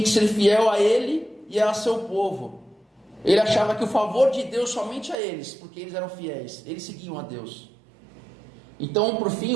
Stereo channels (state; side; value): drops out; left; at 5.2 s